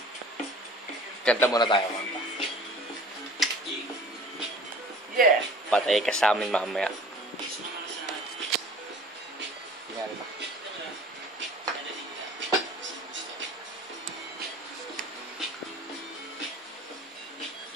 Kanta muna tayo, kanta. Yeah. Patay ka sa amin mamaya. Tingnan ba?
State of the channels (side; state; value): both; normal; correlation 0.45